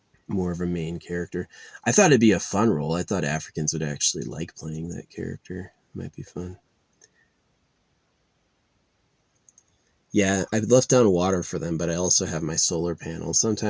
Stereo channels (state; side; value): identical; both; correlation 1.00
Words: more of a main character. I thought it'd be a fun role. I thought Africans would actually like playing that character. Might be fun. Yeah, I've left down water for them, but I also have my solar panel.